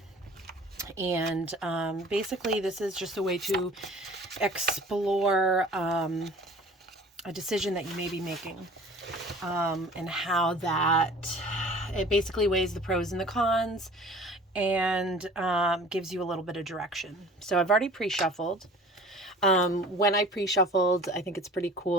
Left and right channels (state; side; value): normal; both; correlation 0.46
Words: And basically, this is just a way to explore a decision that you may be making and how that it basically weighs the pros and the cons and gives you a little bit of direction. So I've already pre-shuffled. When I pre-shuffled, I think it's pretty